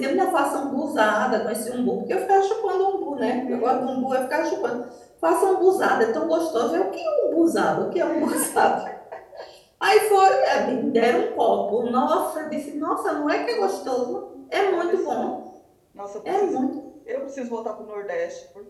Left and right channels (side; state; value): both; identical; correlation 1.00